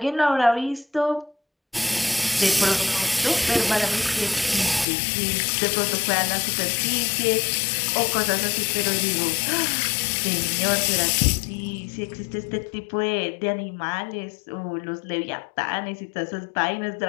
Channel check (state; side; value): drops out; right; at 4.9 s